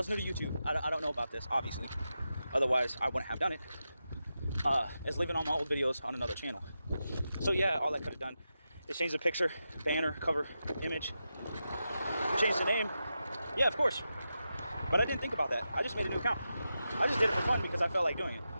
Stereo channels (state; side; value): inverted; both; correlation -0.89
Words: new to YouTube. I don't know about this, obviously. Otherwise, I wouldn't have done it. Is leaving all my old videos on another channel. So yeah, all I could have done is change the picture, banner, cover, image, change the name. Yeah, of course. But I didn't think about that. I just made a new account. I just did it for fun because I felt like doing it.